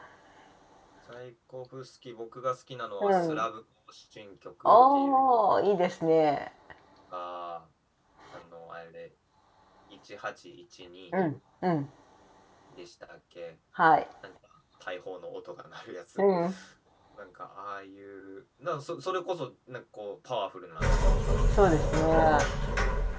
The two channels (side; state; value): both; identical; correlation 1.00